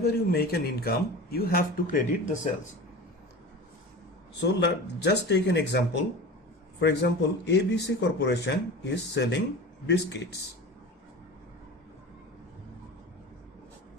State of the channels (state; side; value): normal; both; correlation 0.33